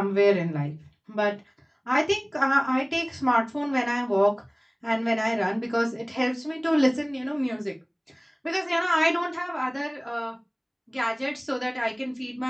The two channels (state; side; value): identical; both; correlation 1.00